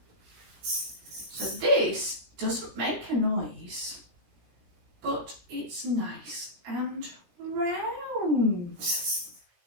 So this doesn't make a noise, but it's nice and round.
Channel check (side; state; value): left; late; 17 ms